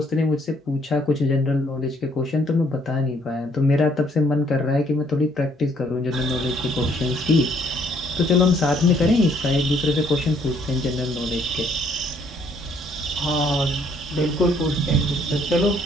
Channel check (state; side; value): normal; both; correlation 0.66